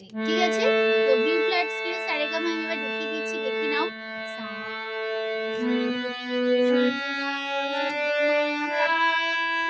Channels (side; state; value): both; identical; correlation 1.00